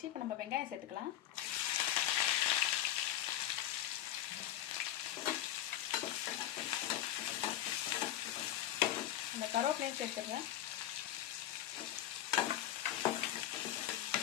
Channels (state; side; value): quieter; right; 12.9 dB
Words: இப்போ நம்ம வெங்காயம் சேர்த்துக்கலாம். இந்த கருவேப்பிலையும் சேர்த்துடுறேன்.